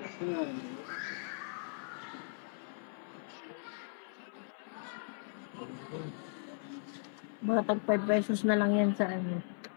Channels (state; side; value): silent; right; 53 dB below the other